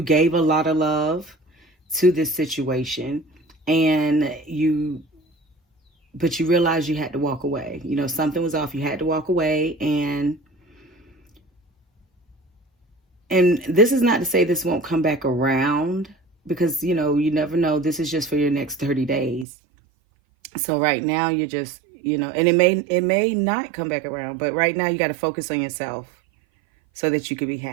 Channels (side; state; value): left; drops out; at 19.5 s